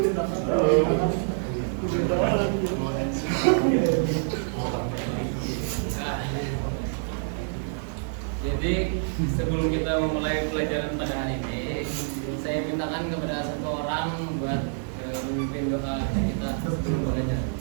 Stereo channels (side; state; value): left; silent; digital silence